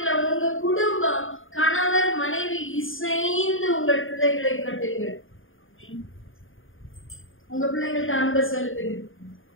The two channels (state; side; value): late; right; 0.58 ms